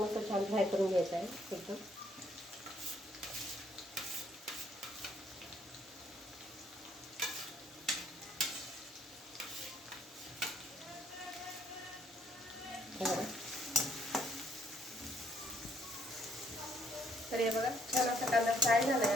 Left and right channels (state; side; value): normal; both; correlation 0.67